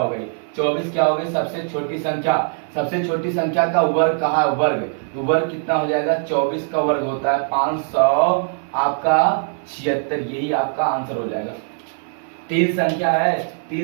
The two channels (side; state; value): left; silent; 63 dB below the other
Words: गई। 24 क्या हो गई? सबसे छोटी संख्या। सबसे छोटी संख्या का वर्ग कहा है? वर्ग। तो वर्ग कितना हो जाएगा? 24 का वर्ग होता है 500 आपका 76। यही आपका आंसर हो जाएगा। तीन संख्या है,